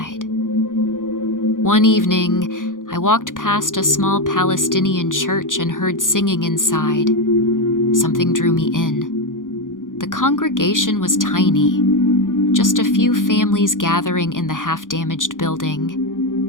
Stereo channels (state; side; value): late; right; 0.89 ms